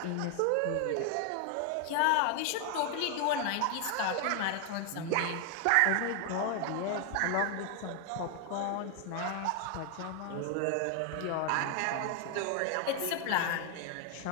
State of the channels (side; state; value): both; different; correlation 0.00